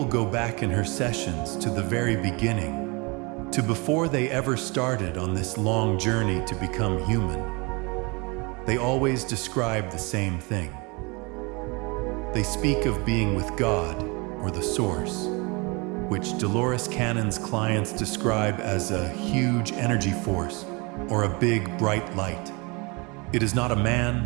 go back in her sessions to the very beginning, to before they ever started on this long journey to become human, they always describe the same thing. They speak of being with God or the Source, which Dolores Cannon's clients describe as a huge energy force or a big, bright light. It is not a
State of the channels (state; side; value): quieter; left; 28.5 dB